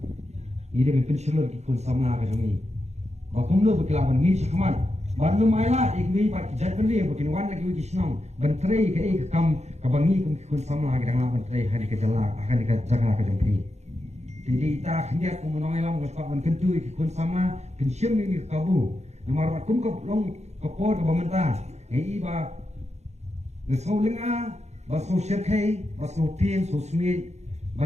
ide ben pensilor ki kun samna ka jangi ba kumlo bekilaban ni sakman ba no maila ikwi pat kijat beli bekin wan lagi wi snong bantrai ka ek kam ka bangi kum ki kun samna ka dang bantrai hari ka jala akan ka jaga ka jampi jadi ta khniat kum no maila mo ban kentu ki kun samna pensim ni kabu nomor kum ko long ko por ka bamanta ei ba ngesau lenga baso syarkai baso tin so smi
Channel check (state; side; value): late; left; 0.32 ms